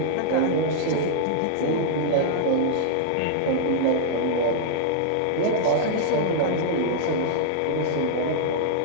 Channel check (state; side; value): different; both; correlation -0.01